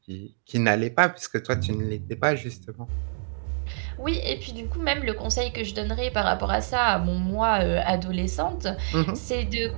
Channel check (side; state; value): left; silent; digital silence